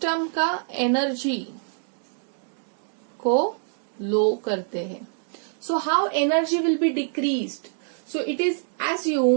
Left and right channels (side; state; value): left; silent; digital silence